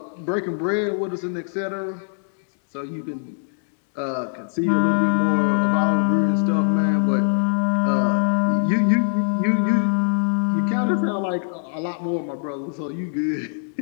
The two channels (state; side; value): silent; right; digital silence